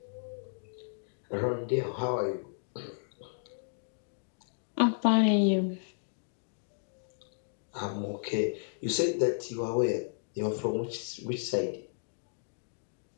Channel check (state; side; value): silent; right; digital silence